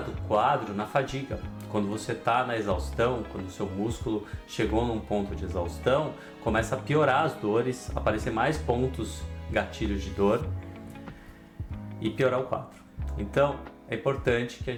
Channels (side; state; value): both; identical; correlation 1.00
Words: quadro na fadiga. Quando você está na exaustão, quando o seu músculo chegou num ponto de exaustão, começa a piorar as dores, aparecer mais pontos gatilhos de dor e piorar o quadro. Então é importante que a